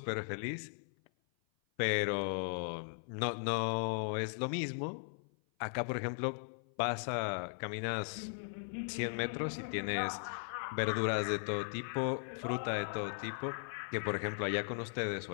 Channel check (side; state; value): right; silent; 53 dB below the other